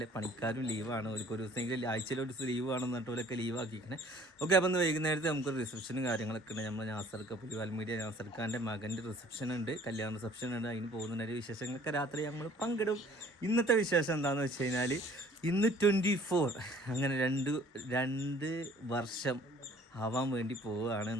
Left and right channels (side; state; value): both; normal; correlation 0.55